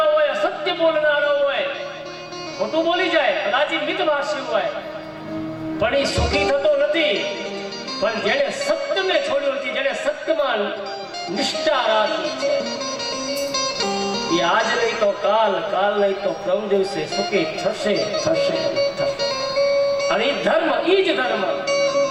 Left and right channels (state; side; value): identical; both; correlation 1.00